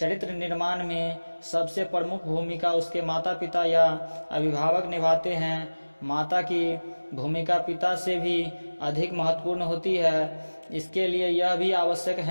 निर्माण में सबसे प्रमुख भूमिका उसके माता पिता या अभिभावक निभाते हैं। माता की भूमिका पिता से भी अधिक महत्वपूर्ण होती है। इसके लिए यह भी आवश्यक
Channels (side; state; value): both; inverted; correlation -1.00